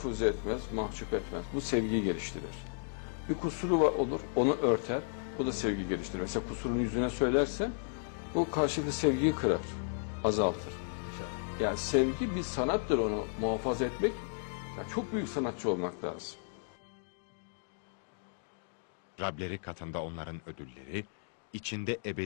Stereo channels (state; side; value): silent; right; digital silence